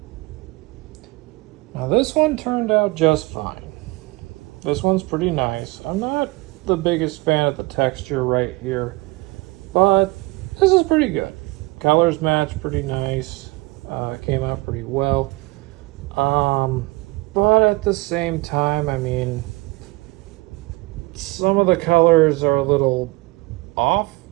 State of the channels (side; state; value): left; quieter; 22.7 dB